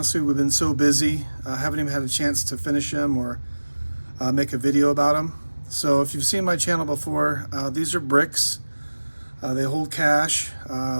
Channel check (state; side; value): inverted; both; correlation -1.00